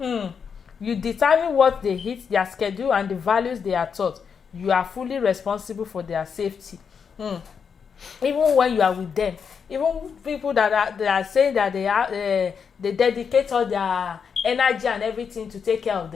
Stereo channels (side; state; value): right; quieter; 6.5 dB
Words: You determine what they eat, their schedule, and the values they are taught. You are fully responsible for their safety. Even when you are with them, even people that are saying that they dedicate all their energy and everything to take care of